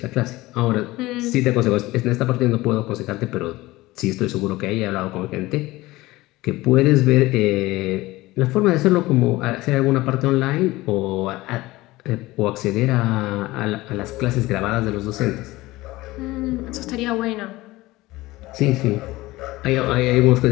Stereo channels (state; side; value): quieter; right; 19.0 dB